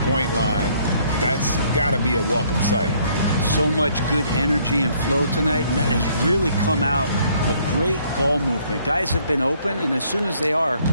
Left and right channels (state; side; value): inverted; both; correlation -0.64